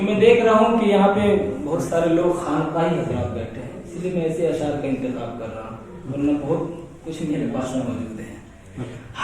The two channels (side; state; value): both; identical; correlation 1.00